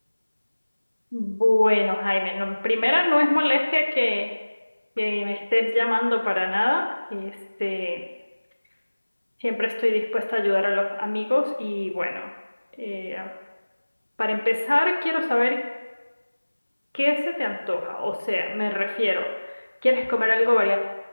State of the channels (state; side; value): inverted; both; correlation -1.00